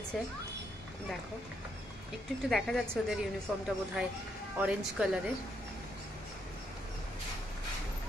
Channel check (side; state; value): both; normal; correlation 0.77